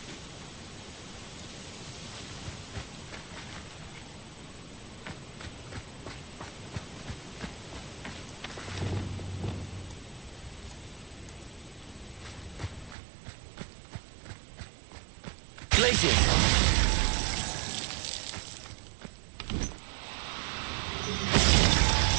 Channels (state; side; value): drops out; left; at 13.0 s